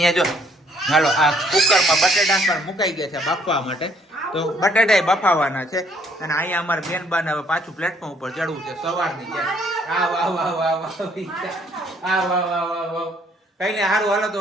જો હાલો આ કુકરમાં બટેટા પણ મુકાઈ ગયા છે બાફવા માટે. તો બટેટા બફાવાના છે અને અહીંયા અમારે બેનબાને હવે પાછું પ્લેટફોર્મ ઉપર ચડવું છે સવારની છે. આ વાહ વાહ વાહ વાહ આ વાહ વાહ વાહ વાહ. કઈ ને સારું હાલો તો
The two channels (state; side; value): normal; both; correlation 0.65